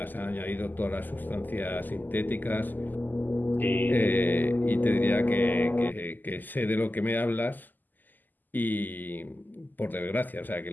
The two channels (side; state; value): right; late; 0.086 ms